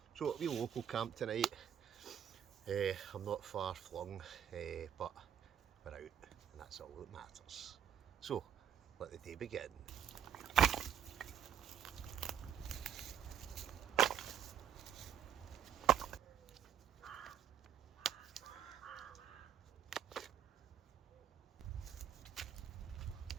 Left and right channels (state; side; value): quieter; left; 9.0 dB